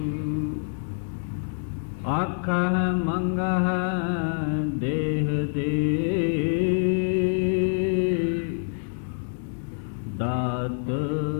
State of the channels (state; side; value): silent; right; digital silence